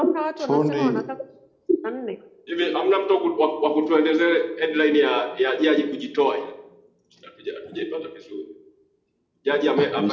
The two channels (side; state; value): both; identical; correlation 1.00